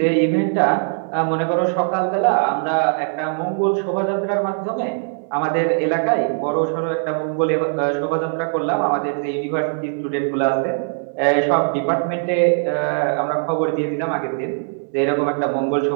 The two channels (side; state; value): left; silent; 64 dB below the other